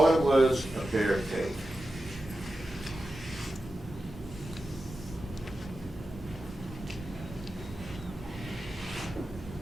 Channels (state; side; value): normal; both; correlation 0.92